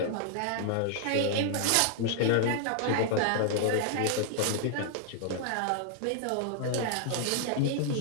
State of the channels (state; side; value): different; both; correlation 0.00